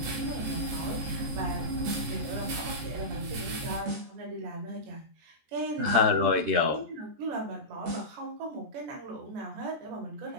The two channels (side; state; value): left; late; 14 ms